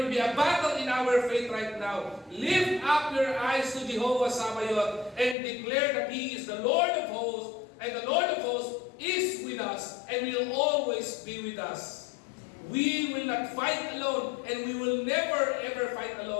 be a battle in our faith right now. Lift up your eyes to Jehovah Sabaoth and declare that He is the Lord of hosts, and the Lord of hosts is with us and will always be with us. We will not fight alone, and we will never ever fight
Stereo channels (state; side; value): drops out; right; at 5.4 s